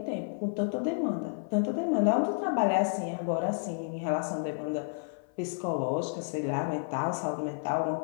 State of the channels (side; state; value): right; silent; 56 dB below the other